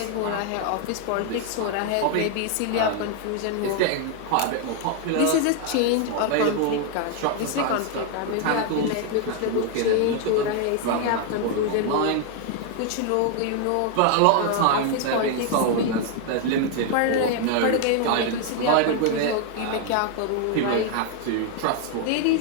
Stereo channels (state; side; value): different; both; correlation 0.00